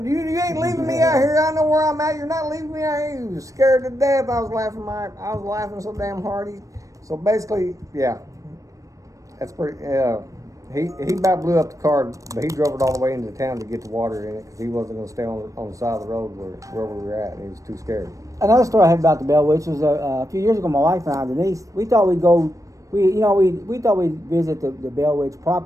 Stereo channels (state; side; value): late; left; 0.16 ms